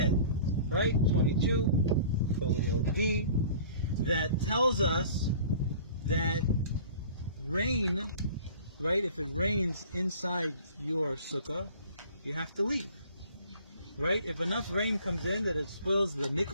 right? 22, folio D, that tells us that rain, right? If it rains inside your sukkah, you have to leave, right? If enough rain comes in that it spoils the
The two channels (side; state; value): both; inverted; correlation -0.46